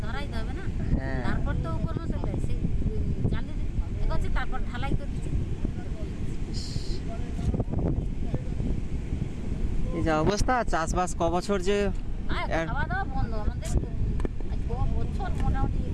ধরাইতে হবে না। হ্যাঁ। তারপর তো উপর মতো সেই জালির এগোচ্ছে, তারপর ঢালাই করে দিচ্ছে। এই যে অবস্থা, চাষবাস ক বছর যে আর খাওয়া দাওয়া বন্ধ আমাদের। আজ বছর মোটামুটি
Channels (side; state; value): both; identical; correlation 1.00